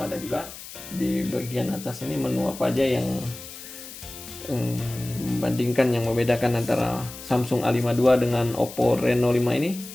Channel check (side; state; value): left; noise; hiss, 14 dB below the sound